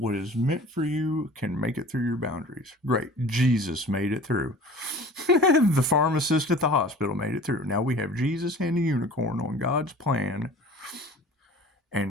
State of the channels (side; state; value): both; normal; correlation 0.43